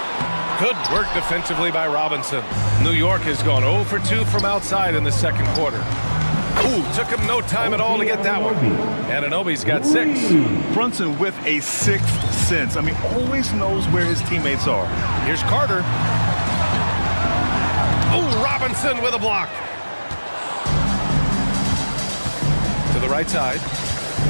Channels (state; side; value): inverted; both; correlation -1.00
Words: Good work defensively by Robinson. New York has gone 0 for 2 from outside in the second quarter. Ooh, took him no time at all to get that one. Anunoby's got 6. Brunson with a 6th sense. I mean, always knows where his teammates are. Here's Carter. Ooh, Robinson with a block. To the right side.